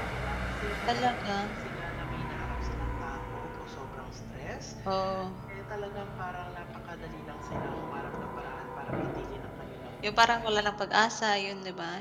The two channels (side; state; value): both; identical; correlation 1.00